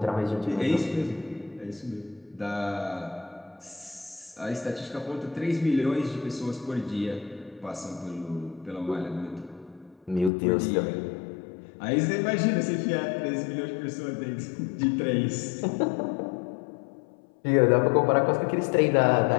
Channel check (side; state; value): right; drops out; at 10.3 s